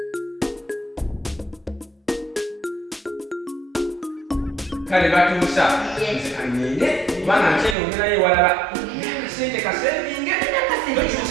Kale Batuusa. Kanyenge. Bana cheno ngena ye walala. Sente kasevinge.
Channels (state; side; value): drops out; left; at 7.8 s